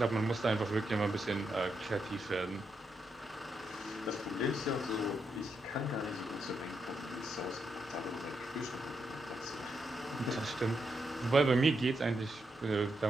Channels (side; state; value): both; normal; correlation 0.82